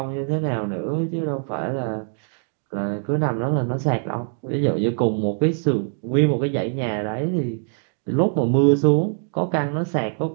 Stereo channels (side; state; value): left; silent; digital silence